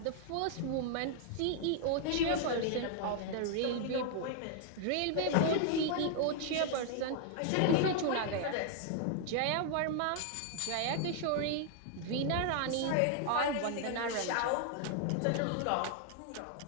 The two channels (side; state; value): both; different; correlation 0.00